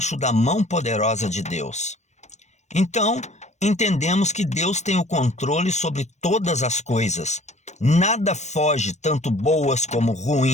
da mão poderosa de Deus. Então, entendemos que Deus tem o controle sobre todas as coisas. Nada foge, tanto boas como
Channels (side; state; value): right; late; 0.34 ms